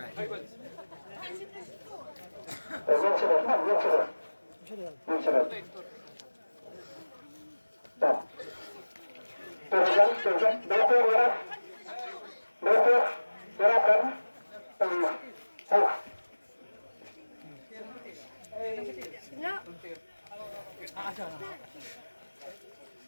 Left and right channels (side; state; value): both; inverted; correlation -1.00